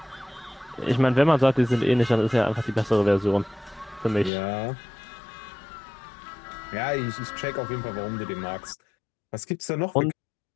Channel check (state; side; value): drops out; right; at 4.3 s